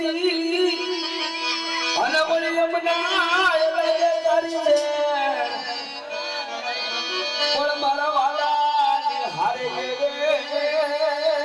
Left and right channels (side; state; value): both; identical; correlation 1.00